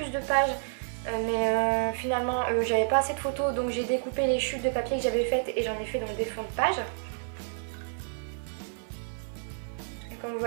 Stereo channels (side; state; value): left; silent; 58 dB below the other